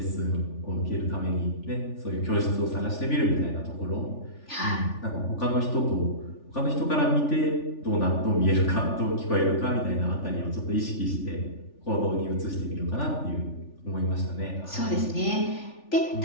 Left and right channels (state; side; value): late; right; 3.4 ms